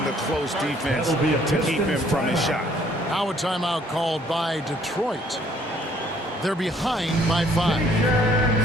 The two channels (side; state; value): both; normal; correlation 0.62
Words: the close defense to keep him from his shot. Now a timeout called by Detroit. They're behind by